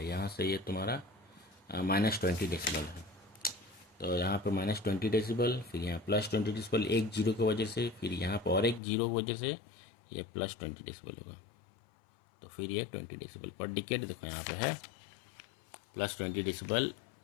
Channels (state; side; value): drops out; right; at 8.8 s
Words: यहाँ से ये तुम्हारा -20 डेसिबल है, तो यहाँ पे -20 डेसिबल, फिर यहाँ +20 डेसिबल, एक जीरो की वजह से, फिर यहाँ पर और एक जीरो की वजह से ये +20 डेसिबल होगा, तो फिर ये 20 डेसिबल पर डिकेड देखो यहाँ पे है +20 डेसिबल